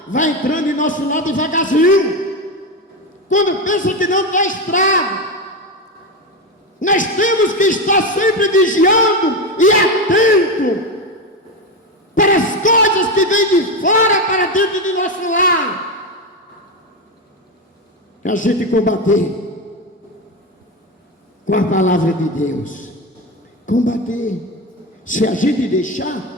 vai entrando em nosso lado devagarzinho. Quando pensa que não tem estrago. Nós temos que estar sempre vigiando e atento para as coisas que vêm de fora para dentro do nosso lar. A gente combater com a palavra de Deus. Combater. Se a gente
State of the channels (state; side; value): normal; both; correlation 0.15